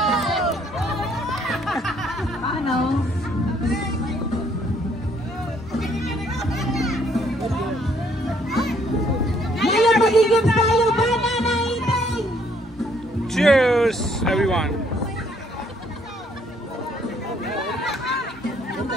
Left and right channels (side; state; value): both; normal; correlation 0.66